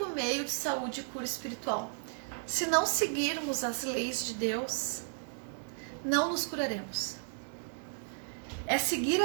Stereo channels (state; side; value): silent; left; digital silence